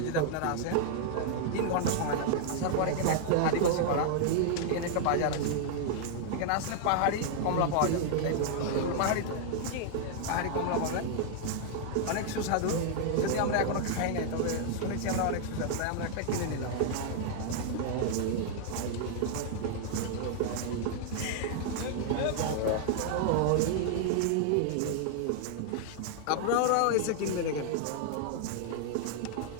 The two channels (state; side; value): different; both; correlation -0.01